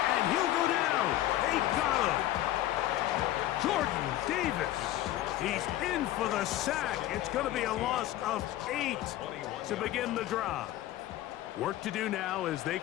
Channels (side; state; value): right; quieter; 14.3 dB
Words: and he'll go down. They got him. Jordan Davis. He's in for the sack. It's going to be a loss of 8 to begin the drive. Work to do now as they